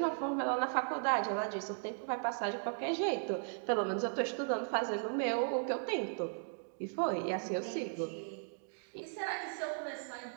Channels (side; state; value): left; silent; digital silence